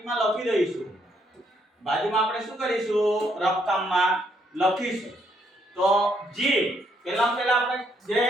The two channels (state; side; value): normal; both; correlation 0.72